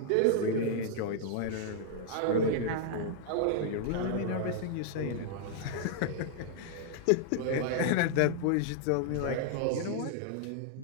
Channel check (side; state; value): both; different; correlation -0.01